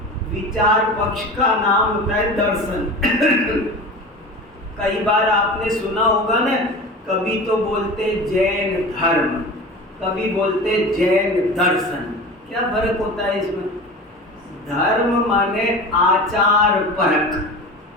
विचार पक्ष का नाम होता है दर्शन। कई बार आपने सुना होगा ना, कभी तो बोलते जैन धर्म, कभी बोलते जैन दर्शन। क्या फर्क होता है इसमें? धर्म माने आचार परक,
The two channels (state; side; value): normal; both; correlation 0.33